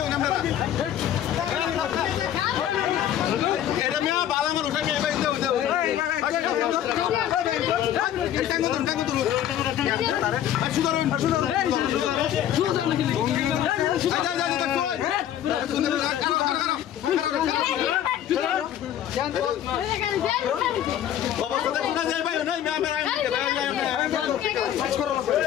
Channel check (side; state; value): right; quieter; 10.9 dB